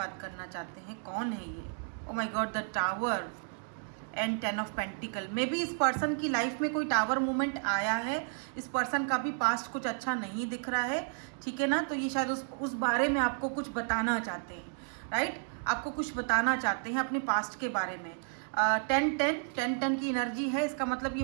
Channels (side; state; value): left; silent; 56 dB below the other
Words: करना चाहते हैं, कौन है ये। Oh my God, the tower and 10 of pentacle. May be इस पर्सन की लाइफ में कोई टावर मूवमेंट आया है। इस पर्सन का भी पास्ट कुछ अच्छा नहीं दिख रहा है, ठीक है ना। तो ये शायद उस बारे में आपको कुछ बताना चाहते हैं, राइट। आपको कुछ बताना चाहते हैं अपने पास्ट के बारे में। 10-10 की एनर्जी है, इसका मतलब ये